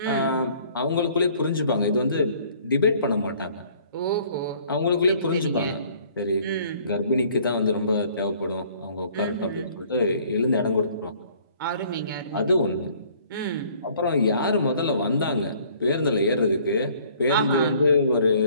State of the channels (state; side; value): inverted; both; correlation -0.57